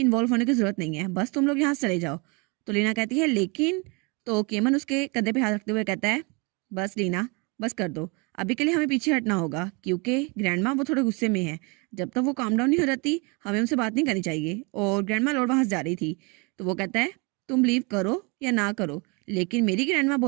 होने की जरूरत नहीं है, बस तुम लोग यहाँ से चले जाओ। तो लीना कहती है लेकिन, तो केमन उसके कंधे पे हाथ रखते हुए कहता है, बस लीना बस कर दो, अभी के लिए हमें पीछे हटना होगा, क्योंकि ग्रैंडमा वो थोड़े गुस्से में है, जब तक वो काम डाउन नहीं हो जाती हमें उनसे बात नहीं करनी चाहिए। और ग्रैंडमा लौट वहां से जा रही थी। तो वो कहता है, तुम लीव करो या ना करो, लेकिन मेरी ग्रैंडमा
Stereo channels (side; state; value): left; quieter; 30.5 dB